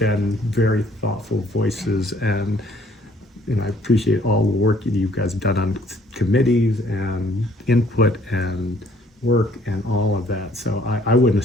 very thoughtful voices, and I appreciate all the work that you guys have done on committees and input and work and all of that. So I wouldn't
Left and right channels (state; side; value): normal; both; correlation 0.61